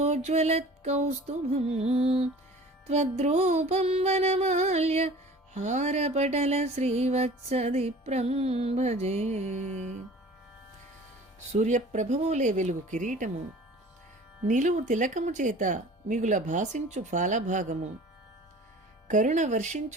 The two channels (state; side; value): normal; both; correlation 0.44